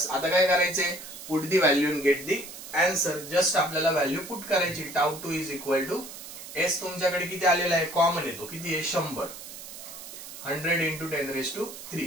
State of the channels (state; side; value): noise; right; hiss, 13 dB below the sound